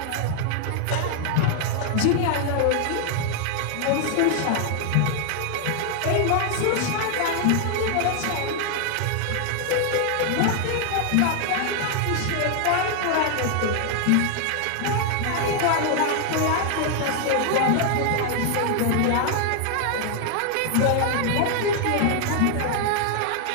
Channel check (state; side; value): different; both; correlation 0.00